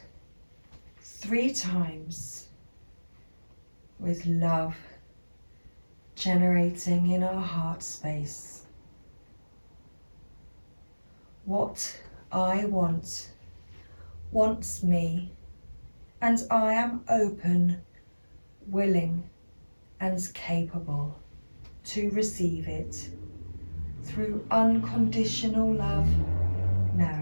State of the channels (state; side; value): inverted; both; correlation -1.00